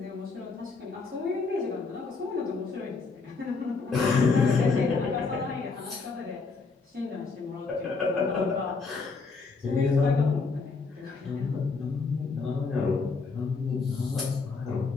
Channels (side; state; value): right; quieter; 4.4 dB